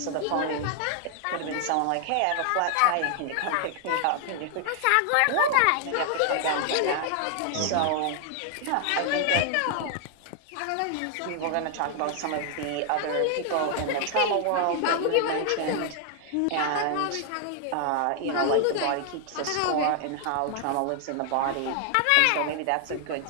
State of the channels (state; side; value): different; both; correlation 0.00